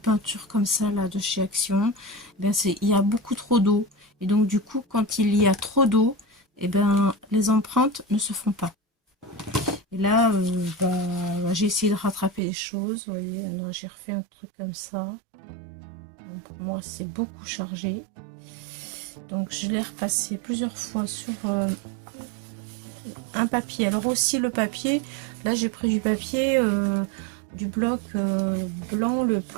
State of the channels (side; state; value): left; drops out; at 12.4 s